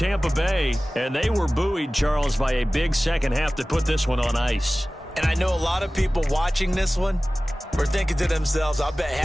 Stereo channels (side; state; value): both; normal; correlation 0.97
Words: Bay. And they were buoyed, Charles, by a big second half to put this one on ice. And I know a lot of people watching this one were thinking to themselves, I bet